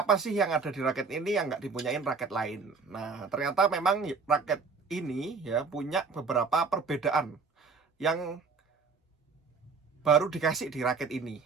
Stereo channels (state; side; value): quieter; left; 4.7 dB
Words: sih yang ada di raket ini yang nggak dipunyain raket lain. Nah, ternyata memang raket ini ya punya beberapa perbedaan yang baru dikasih di raket ini